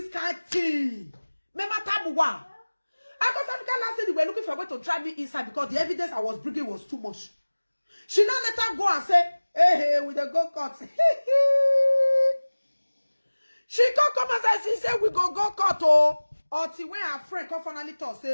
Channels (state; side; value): inverted; both; correlation -1.00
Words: kind of thing. Remember Tabuwa? Because Africa last stage, they were looking for a way to drive me inside because the evidence I was bringing was too much. She now let her go and say, hey, with the go-kart. She come and say, she said, we go go-kart, oh. Until when her friend come finally talk,